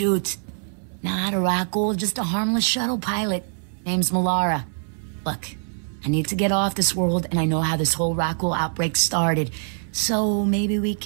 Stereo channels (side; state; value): left; silent; 63 dB below the other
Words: Not a Rackle, just a harmless shuttle pilot. Name's Malara. Look, I need to get off this world, and I know how this whole Rackle outbreak started. So maybe we